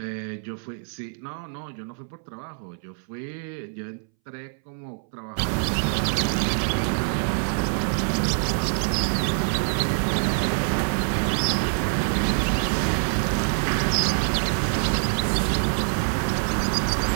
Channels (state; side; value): silent; left; 62 dB below the other